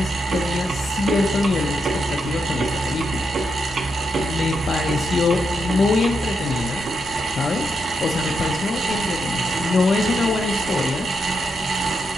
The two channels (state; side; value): normal; both; correlation 0.83